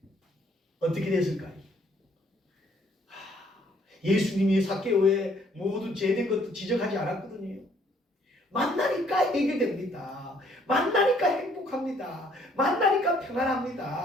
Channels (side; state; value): both; normal; correlation 0.64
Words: 어떻게 됐을까요? 예수님이 사개오의 모든 죄된 것도 지적하지 않았거든요. 만나니까 해결됩니다. 만나니까 행복합니다. 만나니까